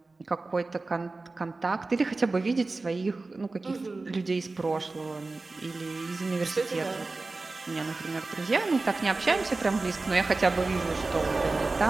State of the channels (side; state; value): left; quieter; 3.5 dB